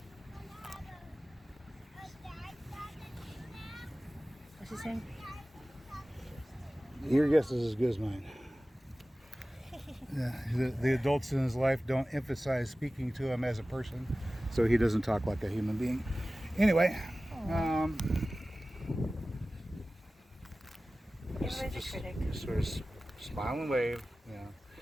What's he saying? Your guess is as good as mine. Yeah, the adults in his life don't emphasize speaking to him as a person, so he doesn't talk like a human being. Anyway, Everybody's a critic. just sort of smile and wave. Yeah.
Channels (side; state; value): both; normal; correlation 0.96